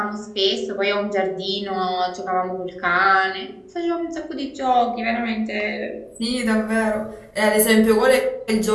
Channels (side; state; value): both; identical; correlation 1.00